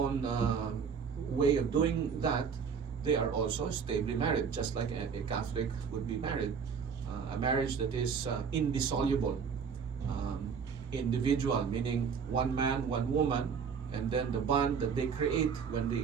way of doing that, they are also stably married, just like a Catholic would be married. A marriage that is indissoluble, individual, meaning one man, one woman, and then the bond that they create when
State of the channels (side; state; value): left; quieter; 6.4 dB